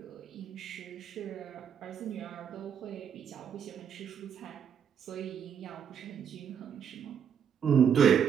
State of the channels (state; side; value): quieter; left; 7.9 dB